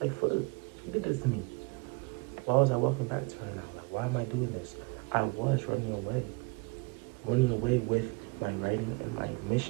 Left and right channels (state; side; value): quieter; left; 29.2 dB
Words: Like, for she did this to me. Why was I walking back to her now? Like, why am I doing this? I was running away. Running away with my writing and my